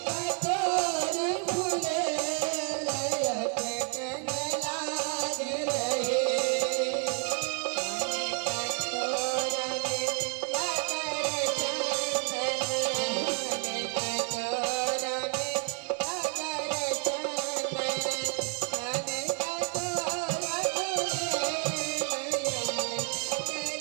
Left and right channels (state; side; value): quieter; left; 36.6 dB